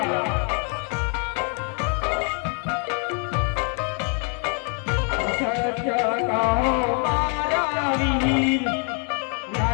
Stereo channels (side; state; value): right; quieter; 39.6 dB